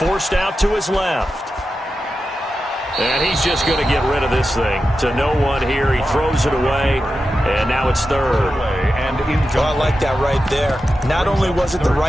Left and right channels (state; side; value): normal; both; correlation 0.91